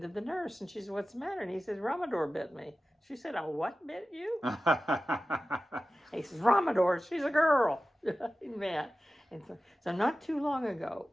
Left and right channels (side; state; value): both; normal; correlation 0.95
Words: the nurse, and she says, "What's the matter?" And he says, "Ramador bit me." She said, "Oh, what bit you?" He says, "Ramador, she's a girl." Man. And so not too long ago,